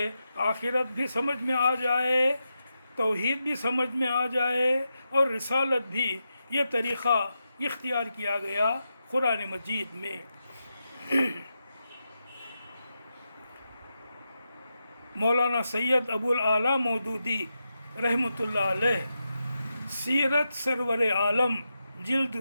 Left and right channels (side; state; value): both; inverted; correlation -0.88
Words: آخرت بھی سمجھ میں آ جائے، توحید بھی سمجھ میں آ جائے اور رسالت بھی، یہ طریقہ اختیار کیا گیا قرآن مجید میں۔ مولانا سید ابو الاعلیٰ مودودی رحمۃ اللہ علیہ سیرت سرور عالم جلد